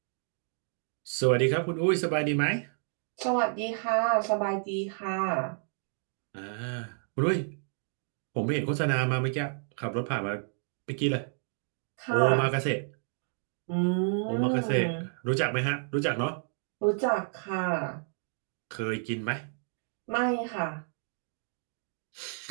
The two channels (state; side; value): silent; left; 57 dB below the other